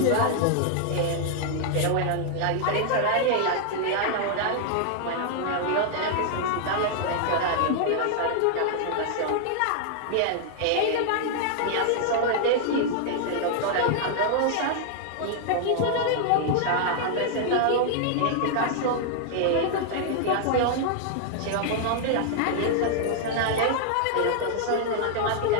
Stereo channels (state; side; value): different; both; correlation -0.01